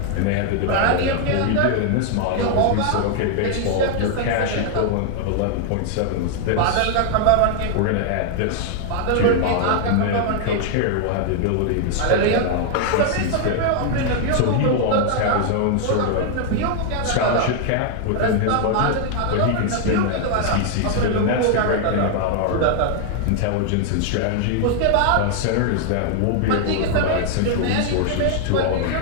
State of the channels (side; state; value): both; different; correlation 0.00